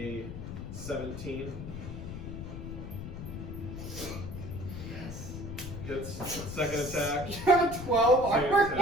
17. Yes. Gets second attack. You have a 12 armor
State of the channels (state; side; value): noise; left; rumble, 8 dB below the sound